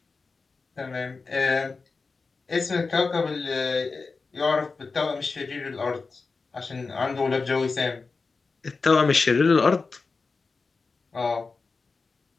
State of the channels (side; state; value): right; quieter; 4.3 dB